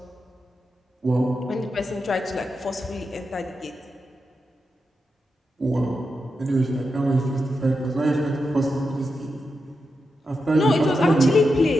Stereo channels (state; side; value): normal; both; correlation 0.87